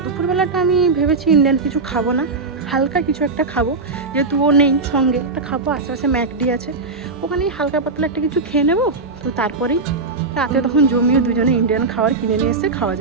দুপুরবেলাটা আমি ভেবেছি ইন্ডিয়ান কিছু খাবো না, হালকা কিছু একটা খাবো, যেহেতু ও নেই সঙ্গে। একটা খাবো, আশেপাশে ম্যাকডি আছে, ওখানেই হালকা পাতলা একটা কিছু খেয়ে নেবো। তো তারপরেই রাতে তখন জমিয়ে দুজনে ইন্ডিয়ান খাবার কিনে নিয়ে এসে খাওয়া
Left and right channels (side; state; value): left; quieter; 3.9 dB